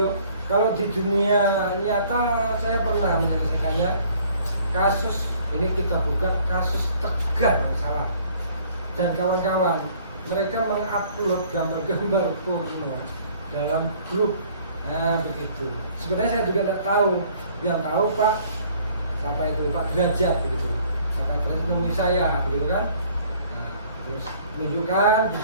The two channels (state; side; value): inverted; both; correlation -0.57